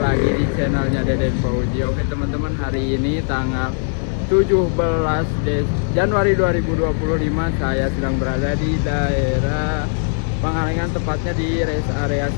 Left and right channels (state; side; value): silent; right; digital silence